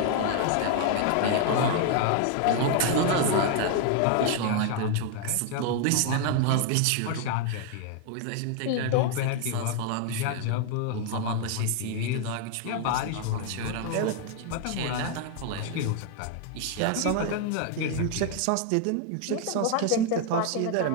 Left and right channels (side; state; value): both; different; correlation 0.00